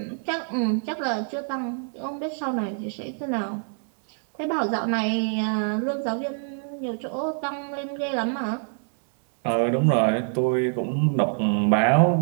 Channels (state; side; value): silent; left; 61 dB below the other